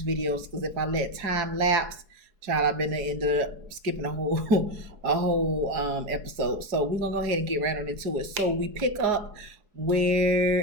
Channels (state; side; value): late; left; 4.8 ms